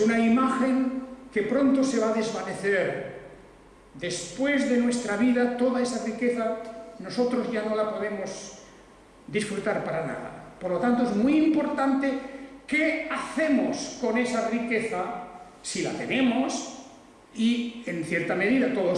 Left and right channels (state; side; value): identical; both; correlation 1.00